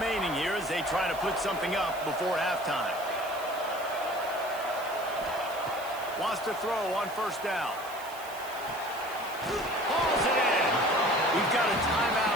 here as they try to put something up before halftime. Wants to throw on first down. Hauls it in. We've got a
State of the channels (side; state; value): right; noise; hiss, 16 dB below the sound